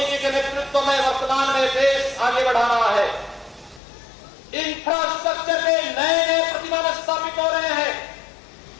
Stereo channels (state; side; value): drops out; right; at 3.8 s